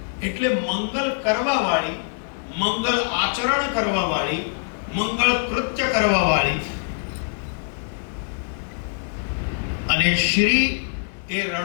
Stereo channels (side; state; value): right; silent; digital silence